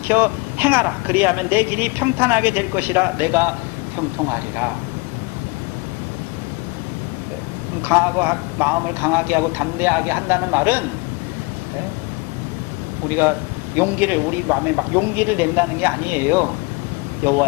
행하라. 그리하면 내 길이 평탄하게 될 것이라. 내가 형통하리라. 마음을 강하게 하고 담대하게 한다는 말은 우리가 우리 마음에 막 용기를 낸다는 게 아니에요.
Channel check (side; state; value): right; quieter; 26.8 dB